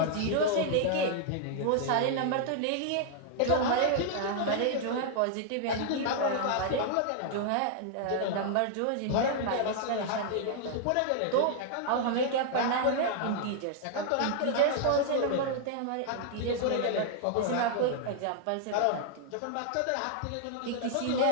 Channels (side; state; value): both; different; correlation -0.01